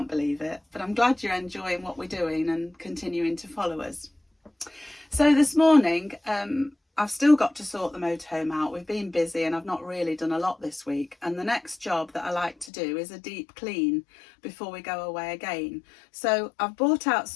believe it. But I'm glad you're enjoying what we're doing and continuing to follow us. So this morning, I've still got to sort the motorhome out. We've been busy and I've not really done a lot this week. And the next job that I like to do is a deep clean before we go away again. So I've brought out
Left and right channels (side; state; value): right; drops out; at 12.7 s